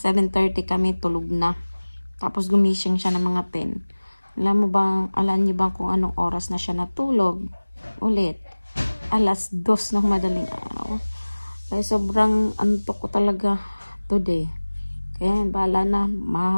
kami tulog na. Tapos gumising siya ng mga 10. Alam niyo bang kung anong oras na siya natulog? Ulit. 2:00 ng madaling araw. Kaya sobrang antok ko talaga today. Kaya bahala na,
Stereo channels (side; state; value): both; inverted; correlation -1.00